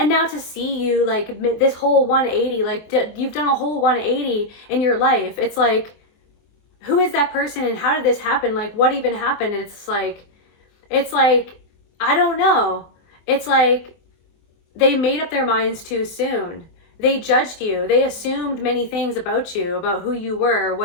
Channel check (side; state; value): right; late; 24 ms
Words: now to see you like this whole 180, like you've done a whole 180 in your life. It's like, who is that person and how did this happen? Like, what even happened? It's like, I don't know. It's like they made up their minds too soon. They judged you. They assumed many things about you, about who you were,